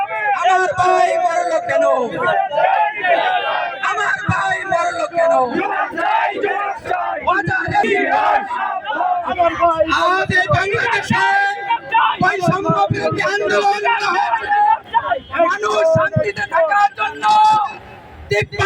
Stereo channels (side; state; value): both; identical; correlation 1.00